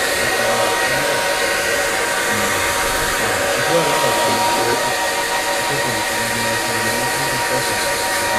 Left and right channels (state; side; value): identical; both; correlation 1.00